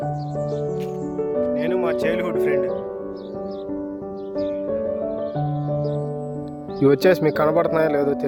నేను మా చైల్డ్హుడ్ ఫ్రెండ్. ఇవి వచ్చేసి మీకు కనబడుతున్నాయో లేదో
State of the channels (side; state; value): both; identical; correlation 1.00